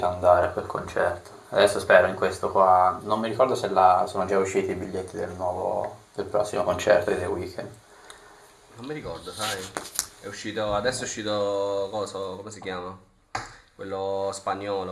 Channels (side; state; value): both; identical; correlation 1.00